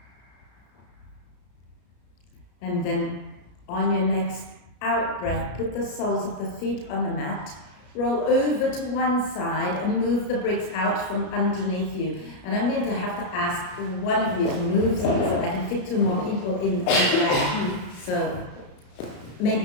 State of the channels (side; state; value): right; late; 33 ms